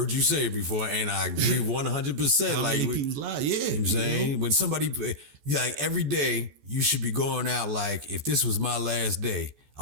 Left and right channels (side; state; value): left; late; 14 ms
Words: you say it before, and I agree 100%. How many people's lives? Yeah. You know what I'm saying? When somebody, every day, you should be going out like, if this was my last day,